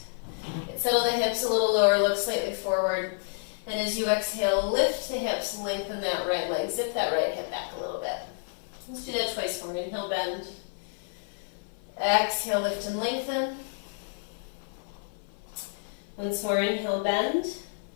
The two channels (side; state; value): right; silent; 58 dB below the other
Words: Settle the hips a little lower, look slightly forward. And as you exhale, lift the hips, lengthen that right leg. Zip that right hip back a little bit. Let's do that twice more. Inhale, bend. Exhale, lift and lengthen. Once more, inhale, bend.